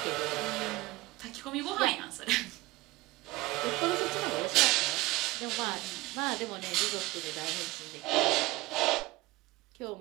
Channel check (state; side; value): quieter; left; 20.0 dB